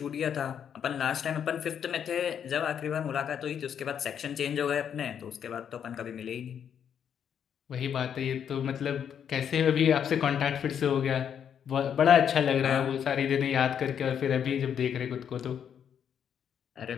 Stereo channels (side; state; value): right; quieter; 8.4 dB